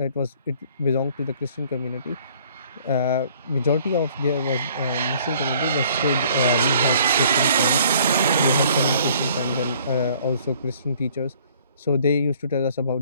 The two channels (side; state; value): both; inverted; correlation -0.58